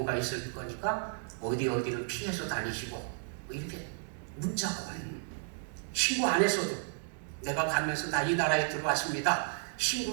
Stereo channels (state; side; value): silent; left; digital silence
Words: 있을 거니까 어디를 피해서 다니시고 뭐 이렇게 문자가 와요. 신고 안 했어도 내가 가면서 나 이 나라에 들어왔습니다.